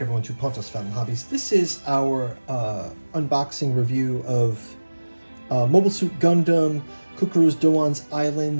everyone, to Pontos Family Hobbies. This is our unboxing review of Mobile Suit Gundam, Cucuruz Doan's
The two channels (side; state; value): both; inverted; correlation -1.00